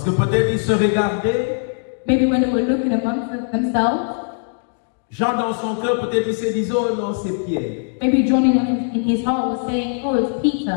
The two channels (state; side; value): silent; right; digital silence